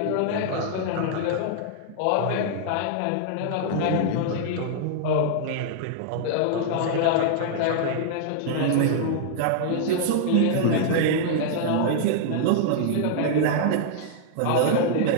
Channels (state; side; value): different; both; correlation -0.01